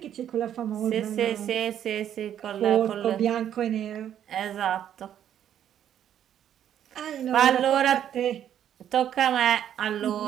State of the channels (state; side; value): quieter; left; 10.2 dB